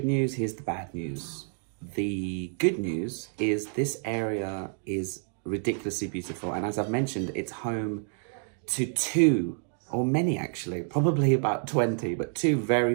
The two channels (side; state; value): left; silent; 59 dB below the other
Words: news, here's the bad news. The good news is this area is ridiculously beautiful, and as I've mentioned, it's home to 2, or many actually, probably about 20, but 2 very